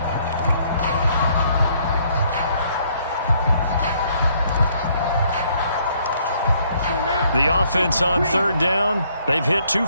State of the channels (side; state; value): both; inverted; correlation -0.66